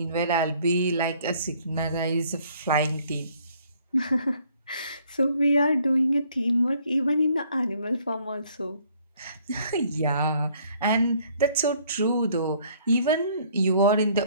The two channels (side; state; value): both; inverted; correlation -0.62